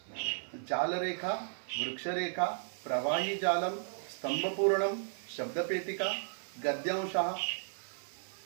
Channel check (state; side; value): silent; left; 55 dB below the other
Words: जालरेखा, वृक्षरेखा, प्रवाही जालम, स्तंभपूर्णम, शब्दपेटिका, गद्यांशः.